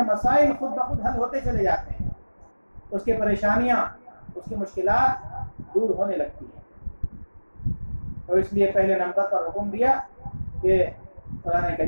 مسائل خود بخود حل ہوتے چلے جاتے ہیں، اس کی پریشانیاں، اس کی مشکلات دور ہونے لگتی ہیں۔ تو اس لیے پہلے نمبر پر حکم دیا کہ قرآن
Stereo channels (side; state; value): both; inverted; correlation -1.00